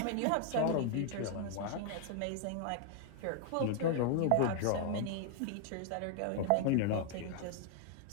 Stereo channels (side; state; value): both; different; correlation 0.00